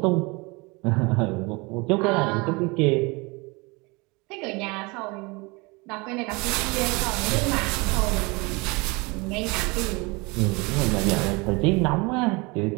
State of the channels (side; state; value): left; quieter; 26.6 dB